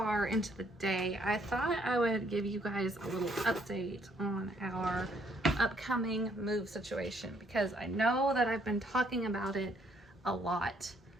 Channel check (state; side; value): normal; both; correlation 0.67